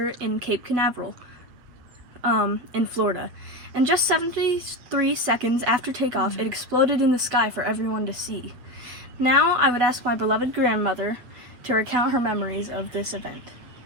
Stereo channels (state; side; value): late; left; 8.1 ms